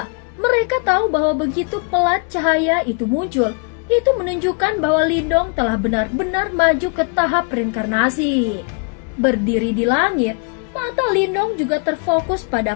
mereka tahu bahwa begitu pelat cahaya itu muncul, itu menunjukkan bahwa Lindong telah benar-benar maju ke tahap reinkarnasi. Berdiri di langit, mata Lindong juga terfokus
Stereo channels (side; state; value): right; quieter; 36.9 dB